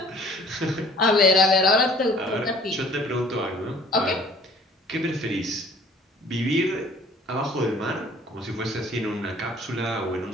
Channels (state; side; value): normal; both; correlation 0.53